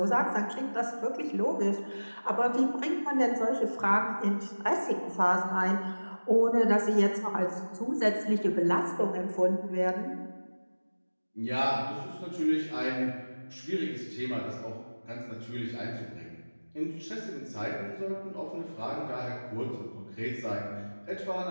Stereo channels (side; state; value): both; inverted; correlation -1.00